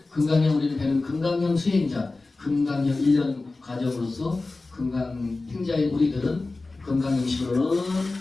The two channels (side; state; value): right; quieter; 3.4 dB